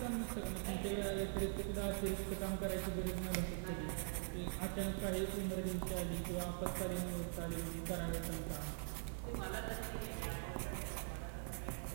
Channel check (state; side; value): silent; left; digital silence